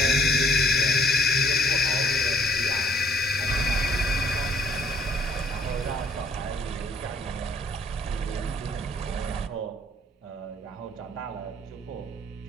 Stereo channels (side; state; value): both; normal; correlation 0.61